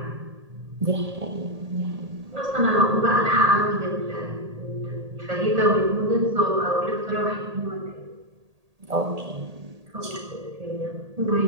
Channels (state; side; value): late; left; 1.8 ms